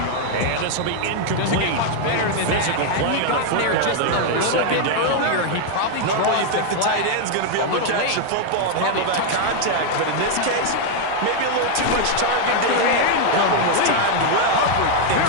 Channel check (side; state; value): both; different; correlation 0.00